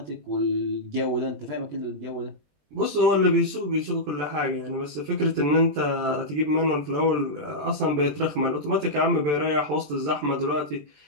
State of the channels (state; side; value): late; left; 20 ms